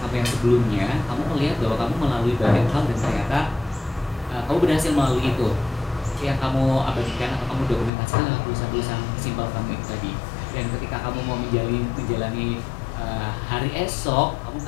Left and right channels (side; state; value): right; drops out; at 7.9 s